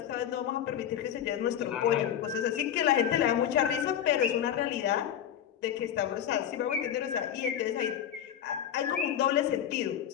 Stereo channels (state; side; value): quieter; right; 9.9 dB